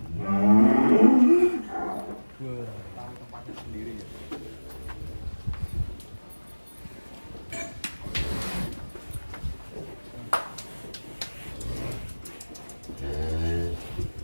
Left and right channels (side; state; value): both; inverted; correlation -1.00